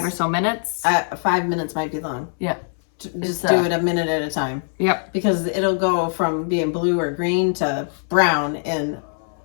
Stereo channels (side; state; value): right; silent; 64 dB below the other